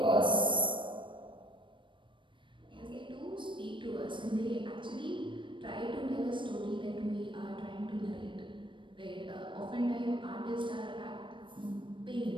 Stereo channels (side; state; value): left; late; 0.24 ms